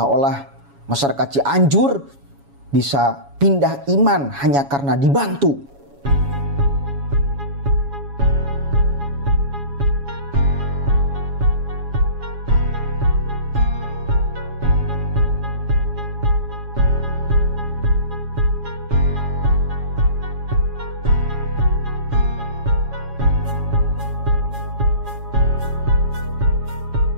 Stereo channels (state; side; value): late; left; 7.2 ms